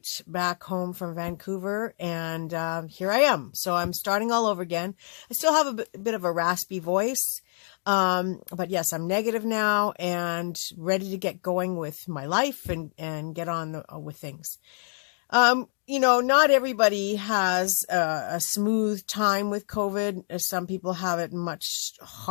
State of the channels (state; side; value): silent; right; 60 dB below the other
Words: back home from Vancouver, and here I am. So I'm starting all over again. I still have a bit of a raspy voice, but yes, I'm negative now and ready to get going with my life and get on with things. Not everybody has a smooth time with COVID. Some people have it much